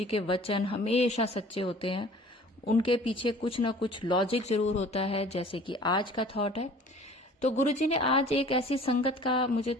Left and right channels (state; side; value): normal; both; correlation 0.48